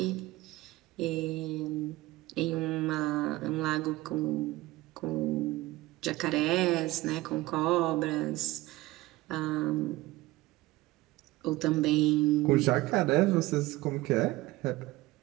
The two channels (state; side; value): quieter; left; 18.9 dB